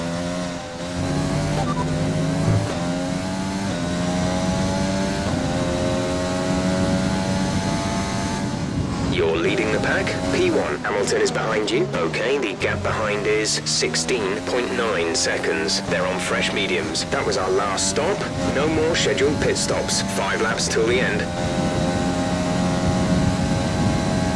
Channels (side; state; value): both; identical; correlation 1.00